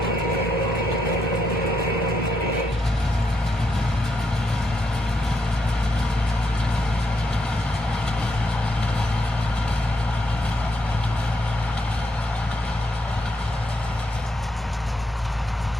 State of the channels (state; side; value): normal; both; correlation 0.79